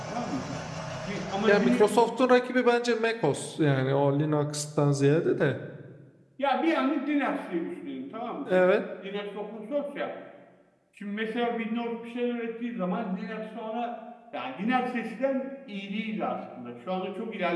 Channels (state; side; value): identical; both; correlation 1.00